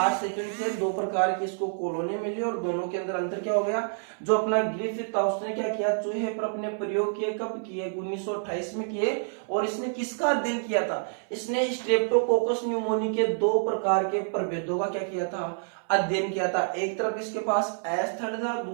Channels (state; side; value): silent; left; 59 dB below the other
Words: सेकंड से दो प्रकार की इसको कॉलोनी मिली और दोनों के अंदर अंतर क्या हो गया? जो अपना ग्रिफिथ था उसने क्या किया? चूहे पर अपने प्रयोग किए। कब किए? 1928 में किए। और इसने किसका अध्ययन किया था? इसने स्ट्रेप्टोकोकस न्यूमोनी के दो प्रकार के प्रभेदों का क्या किया था? अध्ययन किया था। एक तरफ इसके पास एस थर्ड था,